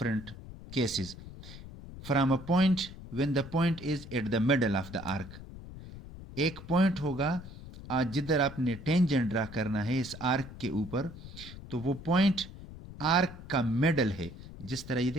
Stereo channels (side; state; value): left; noise; rumble, 14 dB below the sound